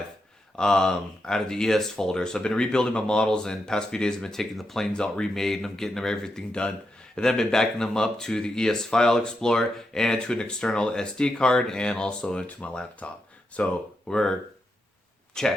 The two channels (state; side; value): normal; both; correlation 0.85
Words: out of the ES folder. So I've been rebuilding my models, and past few days I've been taking the planes out, remade, and I'm getting everything done. And then I've been backing them up to the ES File Explorer and to an external SD card and also into my laptop. So we're